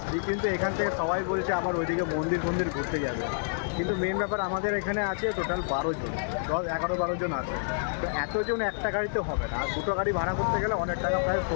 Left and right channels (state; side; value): silent; right; digital silence